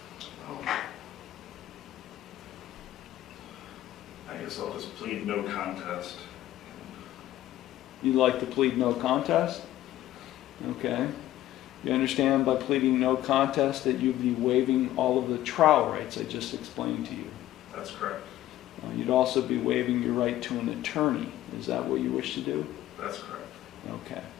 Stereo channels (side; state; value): right; quieter; 14.0 dB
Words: guess I'll just plead no contest. You'd like to plead no contest? Okay. You understand by pleading no contest that you'd be waiving all of the trial rights I just explained to you. That's correct. You'd also be waiving your right to an attorney. Is that what you wish to do? That's correct. Okay.